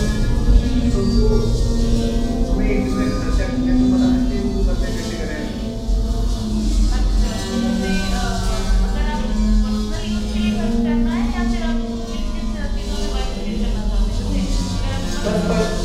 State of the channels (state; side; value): identical; both; correlation 1.00